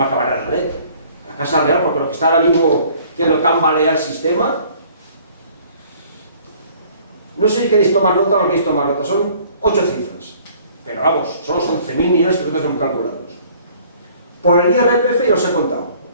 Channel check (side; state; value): both; inverted; correlation -0.55